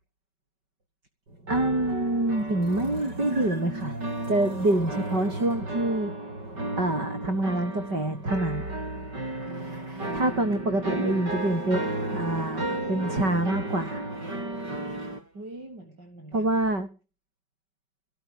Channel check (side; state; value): left; late; 5.2 ms